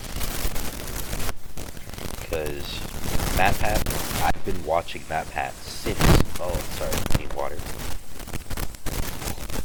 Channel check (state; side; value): identical; both; correlation 1.00